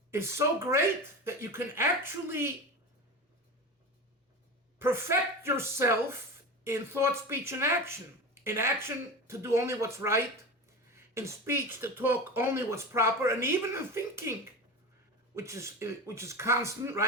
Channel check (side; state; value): both; normal; correlation 0.26